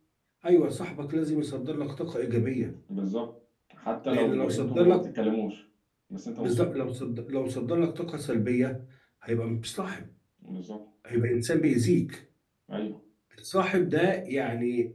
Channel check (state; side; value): identical; both; correlation 1.00